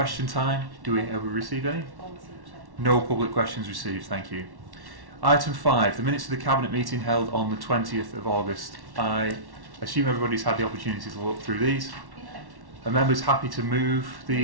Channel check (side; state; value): left; late; 1.1 ms